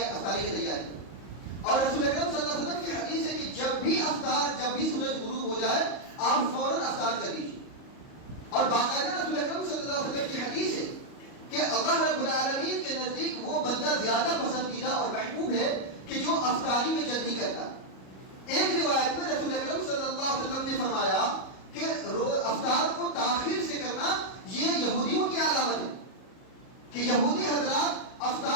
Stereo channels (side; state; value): right; late; 38 ms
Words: کی تیاری کرو. اور رسول اکرم صلی اللہ علیہ وسلم کی حدیث ہے کہ جب بھی سورج غروب ہو جائے آپ فوراً افطار کر دیجیے. اور باقاعدہ رسول اکرم صلی اللہ علیہ وسلم کی حدیث ہے کہ اللہ رب العالمین کے نزدیک وہ بندہ زیادہ پسندیدہ اور محبوب ہے کہ جو افطاری میں جلدی کرتا. ایک روایت میں رسول اکرم صلی اللہ علیہ وسلم نے فرمایا کہ افطار کو تاخیر سے کرنا یہ یہودیوں کی علامت ہے کہ یہودی حضرات